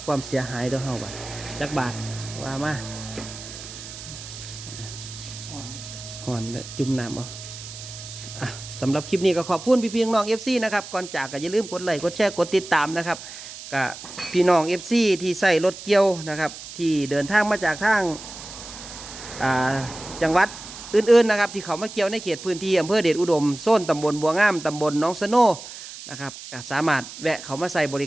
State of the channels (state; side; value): noise; right; hiss, 13 dB below the sound